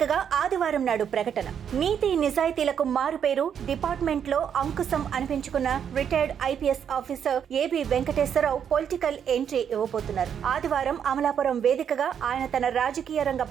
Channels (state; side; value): quieter; left; 8.2 dB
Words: ఆదివారం నాడు ప్రకటన. నీతి నిజాయితీలకు మారుపేరు డిపార్ట్మెంట్లో అంకుశం అనిపించుకున్న retired IPS officer AB Venkateswararao political entry ఇవ్వబోతున్నారు. ఆదివారం అమలాపురం వేదికగా ఆయన తన రాజకీయ రంగ